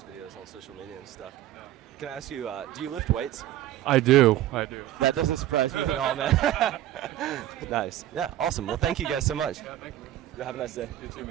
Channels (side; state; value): left; quieter; 13.3 dB